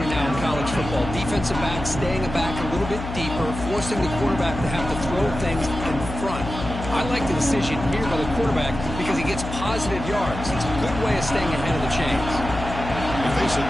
now in college football. Defensive backs staying back a little bit deeper, forcing the quarterback to have to throw things in front. I like the decision here by the quarterback because he gets positive yards. It's a good way of staying ahead of the chains. They face a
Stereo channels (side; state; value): left; noise; hum, 8 dB below the sound